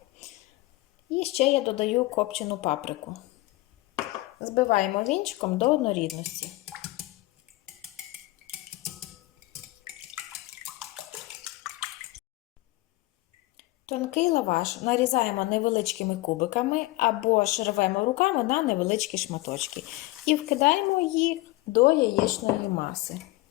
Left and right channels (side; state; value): right; quieter; 19.8 dB